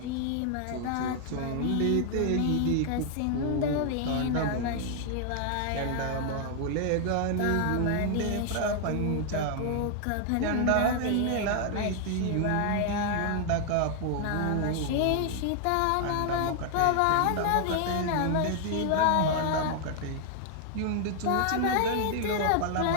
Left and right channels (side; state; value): both; different; correlation 0.00